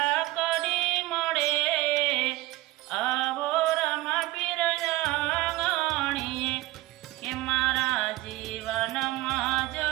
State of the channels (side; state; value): left; quieter; 19.1 dB